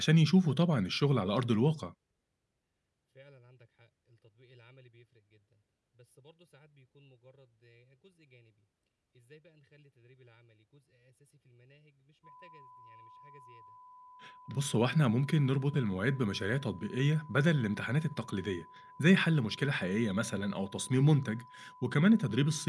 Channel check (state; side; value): identical; both; correlation 1.00